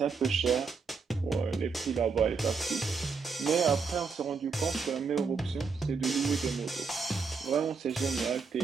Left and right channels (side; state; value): left; quieter; 5.0 dB